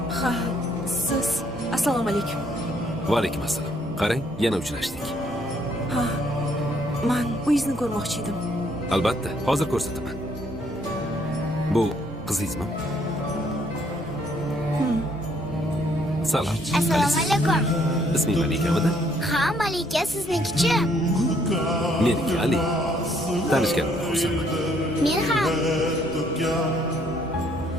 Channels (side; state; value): left; noise; rumble, 21 dB below the sound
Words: Ha, siz. Assalomu alaykum. Va alaykum assalom. Qarang, yana uchrashdik. Ha, men uyingizni ko'rmoqchi edim. Albatta, hozir ko'rsataman. Bu qizingizmi? Salom. Assalomu alaykum. Isming Malikamidi? Ha, Malika siznikichi? Meniki Ali. Tanishganimga xursandman. Men ham.